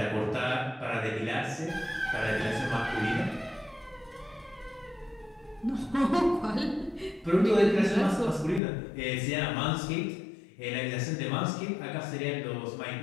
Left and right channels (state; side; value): drops out; right; at 8.6 s